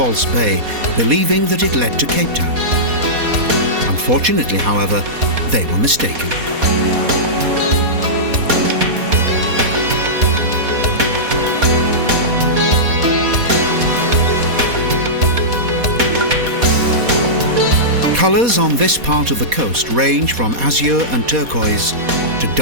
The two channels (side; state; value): left; late; 4.2 ms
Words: Bay, believing that it led to Cape Town. Unfortunately, however, they were mistaken. Colours on this part of the coast range from azure and turquoise to